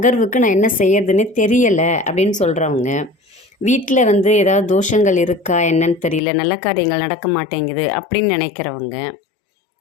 நான் என்ன செய்யறதுன்னு தெரியலை அப்படின்னு சொல்கிறவங்க, வீட்டில் ஏதாவது தோஷங்கள் இருக்கா என்னன்னு தெரியல, நல்ல காரியங்கள் நடக்க மாட்டேங்குது அப்படின்னு நினைக்கிறவங்க,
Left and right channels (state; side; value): drops out; right; at 6.2 s